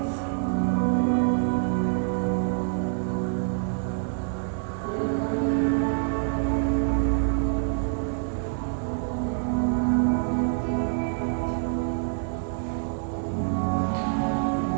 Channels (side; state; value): left; silent; digital silence